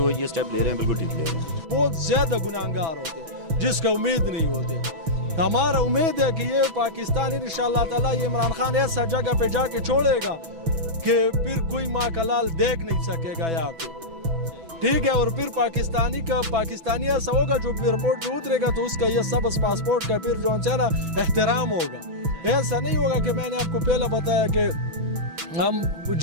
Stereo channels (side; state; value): left; late; 6.1 ms